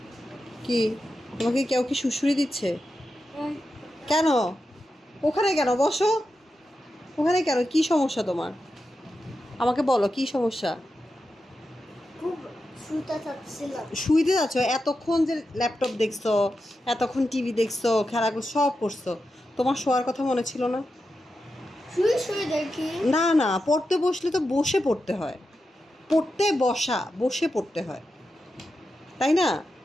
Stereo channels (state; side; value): normal; both; correlation 0.89